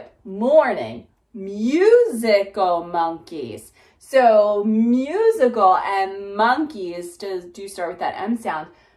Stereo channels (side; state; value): both; identical; correlation 1.00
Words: morning, musical monkeys. So musical and monkeys do start with that M sound.